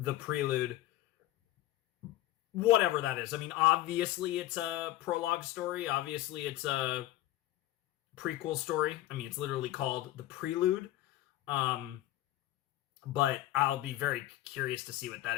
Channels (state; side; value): quieter; right; 15.3 dB